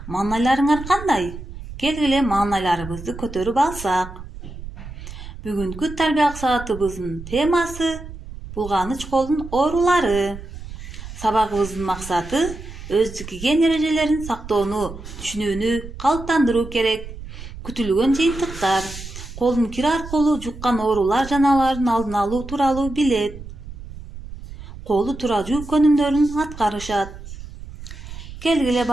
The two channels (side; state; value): right; noise; rumble, 12 dB below the sound